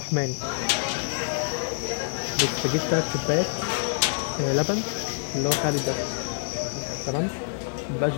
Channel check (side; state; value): right; silent; digital silence